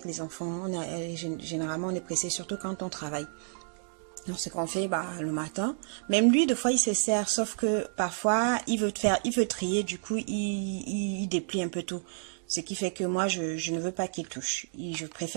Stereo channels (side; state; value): left; silent; digital silence